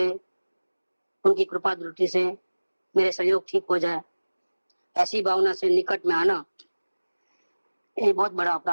उनकी कृपा दृष्टि से मेरे सहयोग ठीक हो जाए, ऐसी भावना से निकट में आना ये बहुत बड़ा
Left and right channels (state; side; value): inverted; both; correlation -1.00